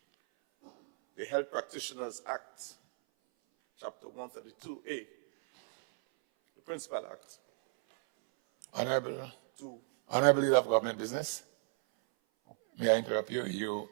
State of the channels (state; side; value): silent; left; 55 dB below the other